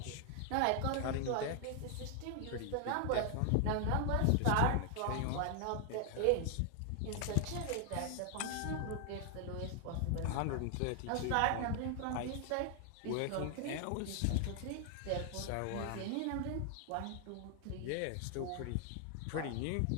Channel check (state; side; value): different; both; correlation 0.00